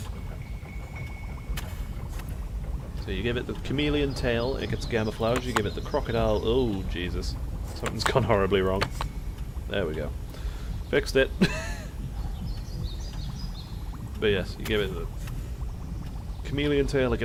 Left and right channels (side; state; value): both; identical; correlation 1.00